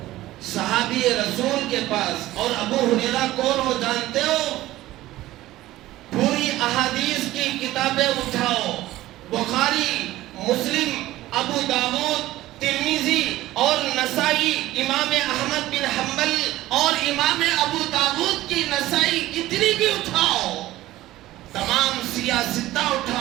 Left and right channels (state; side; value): quieter; left; 16.1 dB